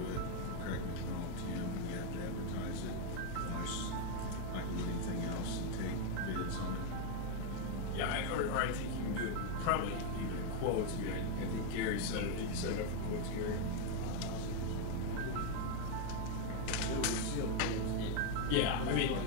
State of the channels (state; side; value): different; both; correlation 0.01